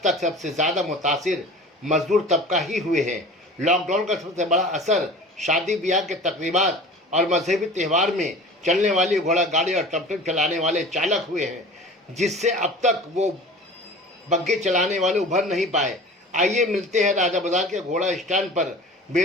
तक सबसे ज़्यादा मुतासिर मजदूर तबका ही हुए हैं। लॉकडाउन का सबसे बड़ा असर शादी ब्याह के तकरीबात और मजहबी त्यौहार में चलने वाली घोड़ा गाड़ी और टमटम चलाने वाले चालक हुए हैं, जिससे अब तक वो बग्घे चलाने वाले उभर नहीं पाए। आइए मिलते हैं राजा बाजार के घोड़ा स्टैंड पर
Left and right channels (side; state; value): both; normal; correlation 0.40